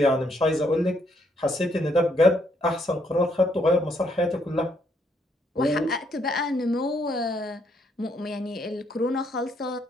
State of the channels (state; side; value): normal; both; correlation 0.72